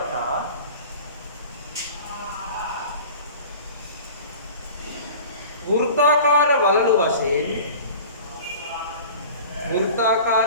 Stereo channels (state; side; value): inverted; both; correlation -0.40